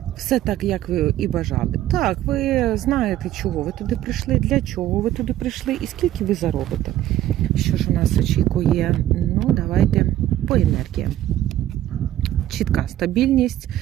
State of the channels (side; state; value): left; quieter; 13.2 dB